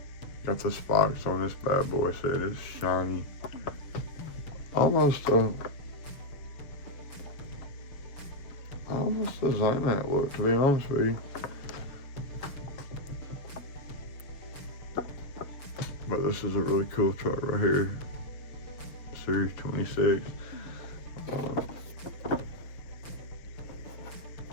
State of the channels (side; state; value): right; late; 6.8 ms